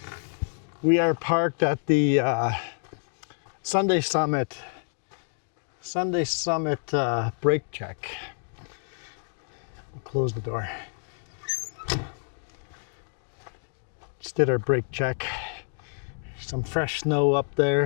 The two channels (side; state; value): right; silent; digital silence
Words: We are parked at the Sunday Summit brake check. We'll close the door. Just did our brake check. Some fresh snow up